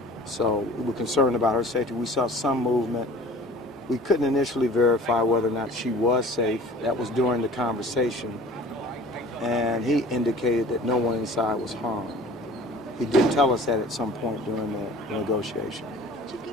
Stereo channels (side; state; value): both; normal; correlation 0.46